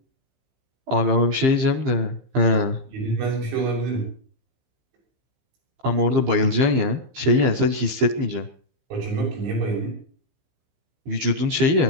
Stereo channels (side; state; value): left; late; 15 ms